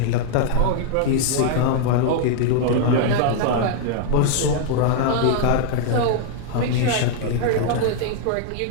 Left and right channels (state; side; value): different; both; correlation -0.01